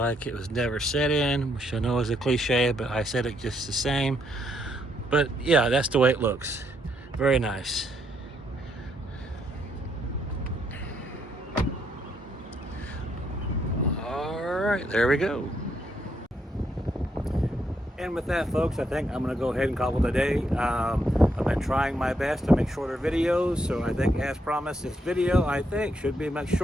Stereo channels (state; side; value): normal; both; correlation 0.75